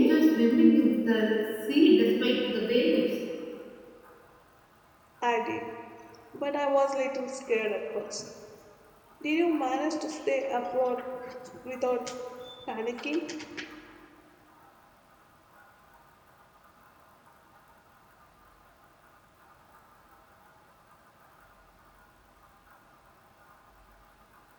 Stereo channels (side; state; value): both; identical; correlation 1.00